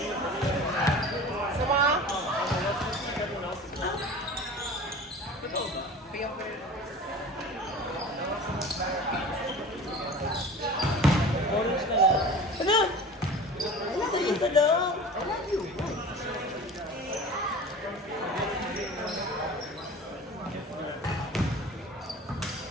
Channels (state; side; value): normal; both; correlation 0.38